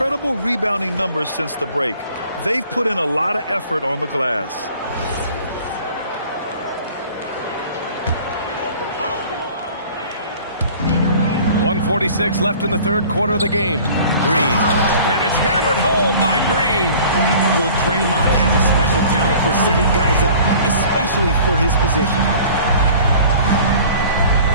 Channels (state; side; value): inverted; both; correlation -0.48